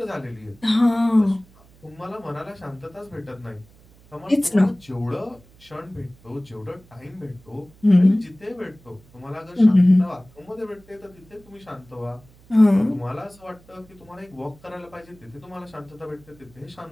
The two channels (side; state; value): right; noise; hum, 27 dB below the sound